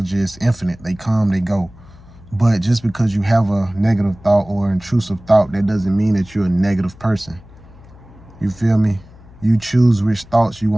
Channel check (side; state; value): left; noise; hum, 22 dB below the sound